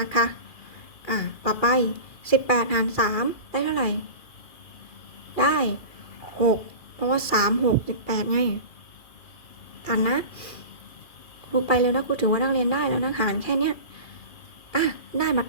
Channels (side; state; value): right; late; 2.4 ms